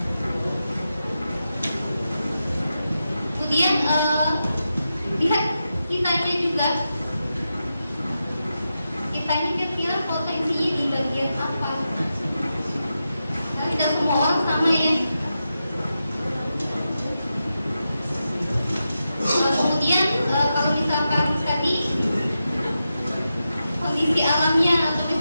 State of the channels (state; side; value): inverted; both; correlation -0.89